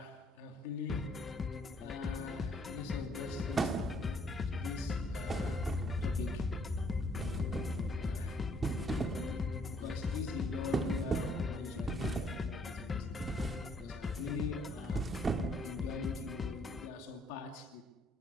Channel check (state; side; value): normal; both; correlation 0.66